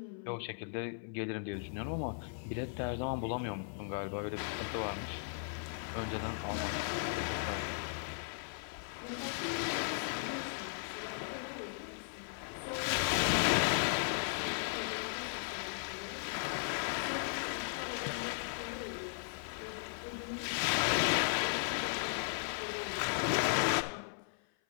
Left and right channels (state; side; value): silent; right; 53 dB below the other